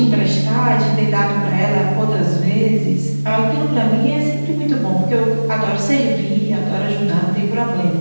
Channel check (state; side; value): inverted; both; correlation -1.00